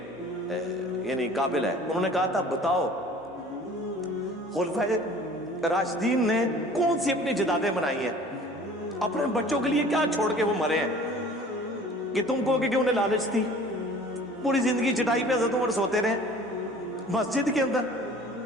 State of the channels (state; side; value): normal; both; correlation 0.47